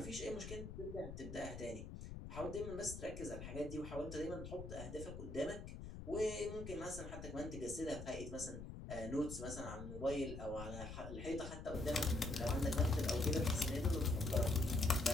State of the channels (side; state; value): left; noise; rumble, 9 dB below the sound